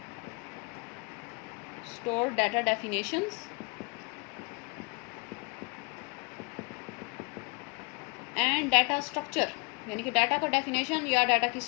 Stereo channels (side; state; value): right; quieter; 30.2 dB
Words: data definitions and data structure, यानी कि डाटा का डेफिनेशन या डाटा की